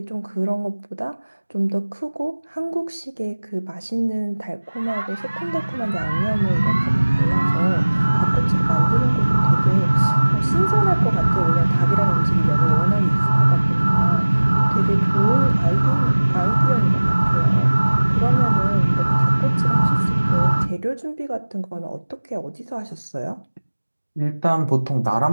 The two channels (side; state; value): both; inverted; correlation -1.00